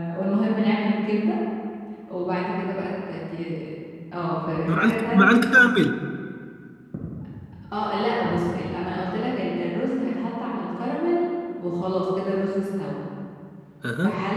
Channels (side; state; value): both; identical; correlation 1.00